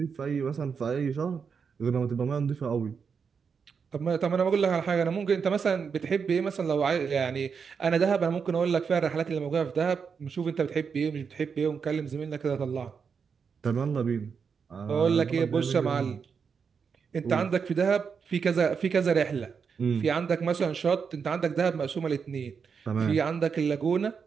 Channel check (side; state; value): left; quieter; 6.1 dB